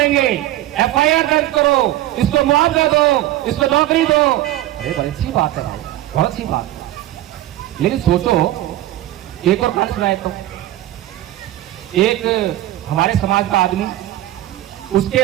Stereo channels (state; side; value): quieter; left; 14.9 dB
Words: एफआईआर दर्ज करो, इसको मुआवजा दो, इसको नौकरी दो। अरे बड़ी अच्छी बात है भाई, बहुत अच्छी बात है। लेकिन सोचो, एक और कहानी सुनाए तो, एक हमारे समाज का आदमी, उसके